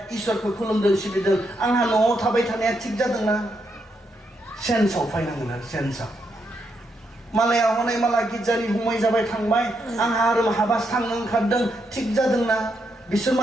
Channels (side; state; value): both; normal; correlation 0.80